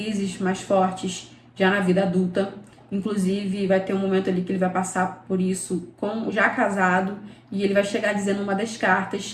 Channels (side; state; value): both; identical; correlation 1.00